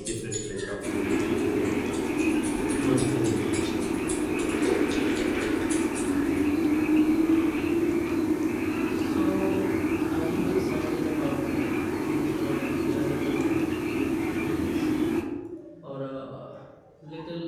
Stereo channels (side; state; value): both; identical; correlation 1.00